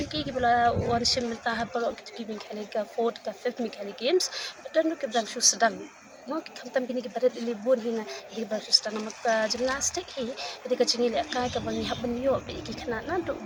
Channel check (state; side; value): identical; both; correlation 1.00